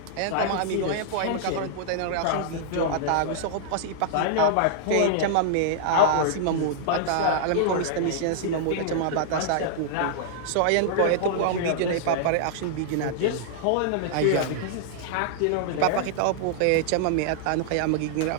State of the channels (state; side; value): different; both; correlation -0.01